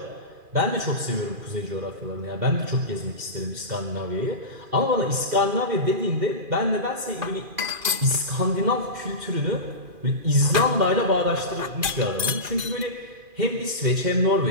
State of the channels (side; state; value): left; late; 2.4 ms